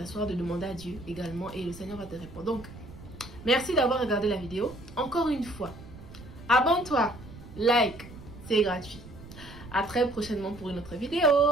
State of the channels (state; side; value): noise; right; rumble, 16 dB below the sound